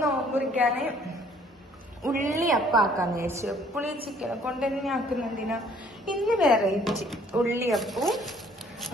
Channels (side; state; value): both; normal; correlation 0.59